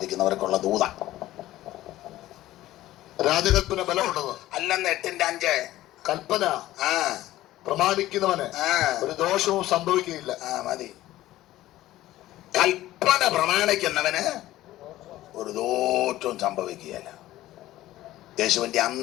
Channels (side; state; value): right; quieter; 15.3 dB